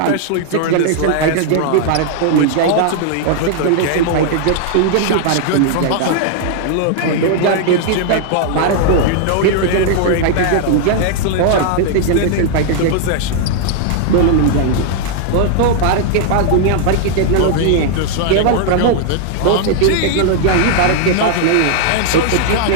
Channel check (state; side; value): different; both; correlation 0.00